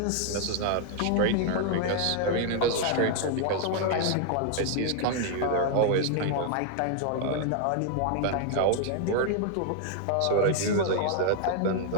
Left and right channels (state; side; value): different; both; correlation 0.00